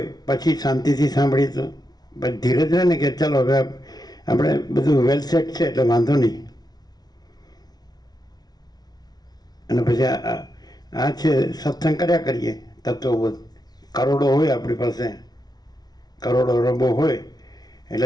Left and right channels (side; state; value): right; late; 0.19 ms